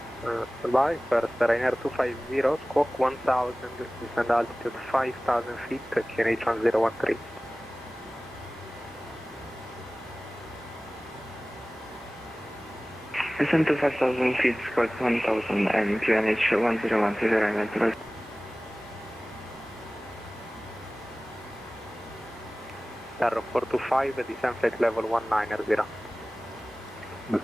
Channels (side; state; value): both; normal; correlation 0.98